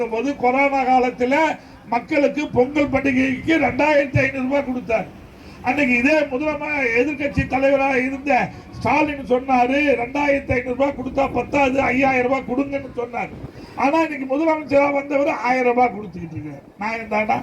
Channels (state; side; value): identical; both; correlation 1.00